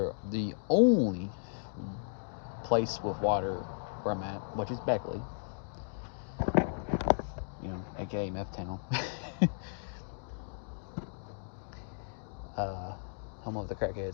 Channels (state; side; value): silent; right; digital silence